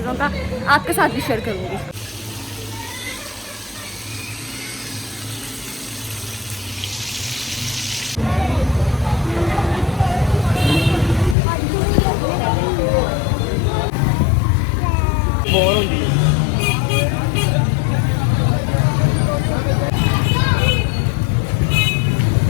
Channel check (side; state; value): right; drops out; at 11.4 s